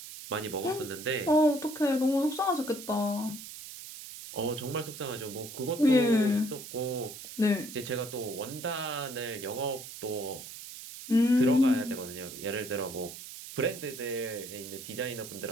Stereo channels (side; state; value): right; noise; hiss, 12 dB below the sound